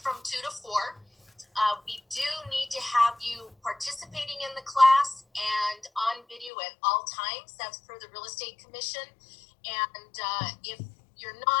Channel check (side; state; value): right; drops out; at 6.5 s